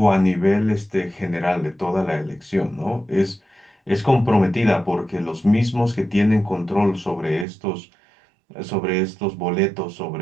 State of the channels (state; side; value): drops out; left; at 7.5 s